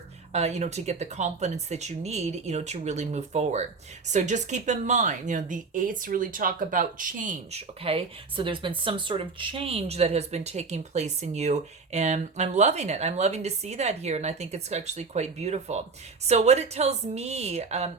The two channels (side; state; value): left; quieter; 4.5 dB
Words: To get the confidence that you need, to really move forward. So just keep in mind, the 8s really talk about change, okay? So there's been some sort of change that has been taking place in you, and I'm loving it. I'm loving to see that here, and I think it's actually quite beautiful. So what it tells me